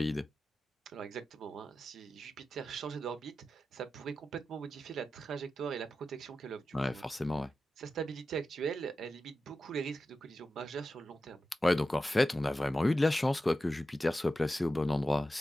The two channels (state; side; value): normal; both; correlation 0.92